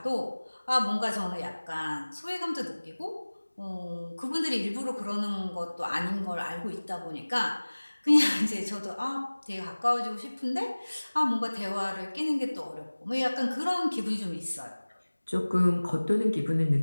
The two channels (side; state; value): both; inverted; correlation -1.00